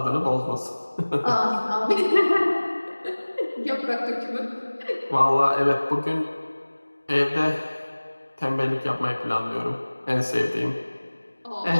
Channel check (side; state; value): both; inverted; correlation -1.00